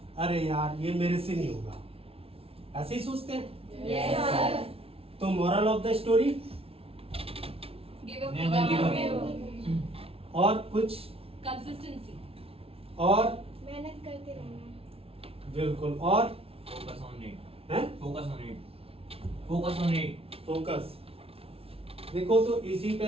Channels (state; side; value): late; left; 0.27 ms